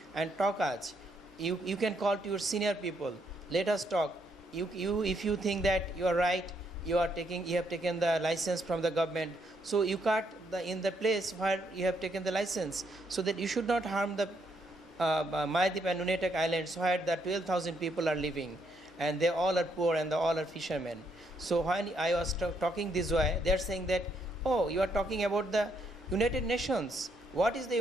and talk us. You can call to your senior people. Let us talk. If you think that you are right, you have taken the license from the government. So you cut in the place where you have taken the license, so that you should not harm the Mayadip and Nunatak Islands, where the 12,000 people are living, and they all are poor and they all are fishermen. So when I was talking this way, they are saying that, oh, you are talking about the United Nations. What is the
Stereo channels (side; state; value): both; normal; correlation 0.74